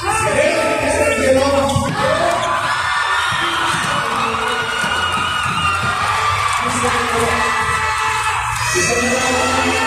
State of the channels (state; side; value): identical; both; correlation 1.00